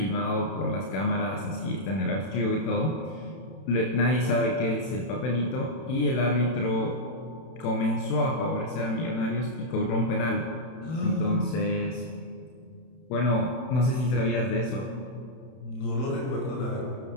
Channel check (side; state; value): right; late; 31 ms